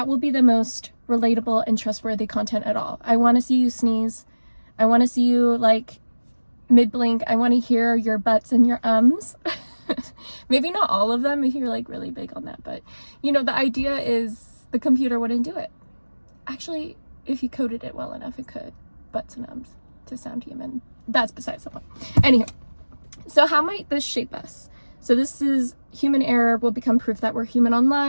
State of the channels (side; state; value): both; inverted; correlation -1.00